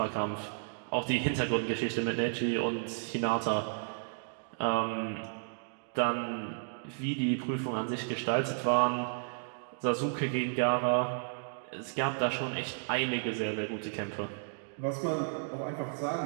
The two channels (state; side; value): silent; left; digital silence